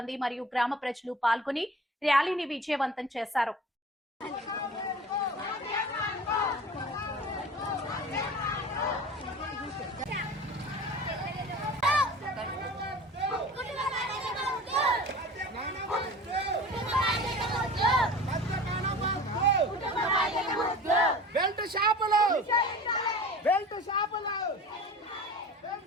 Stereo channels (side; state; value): both; normal; correlation 0.38